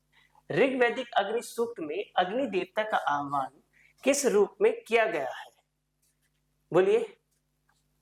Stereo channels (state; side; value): identical; both; correlation 1.00